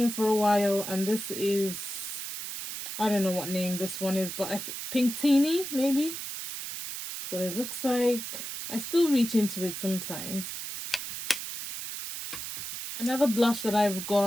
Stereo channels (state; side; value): noise; right; hiss, 7 dB below the sound